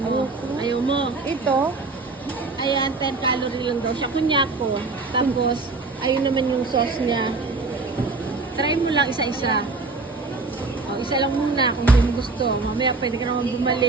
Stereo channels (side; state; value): left; quieter; 3.8 dB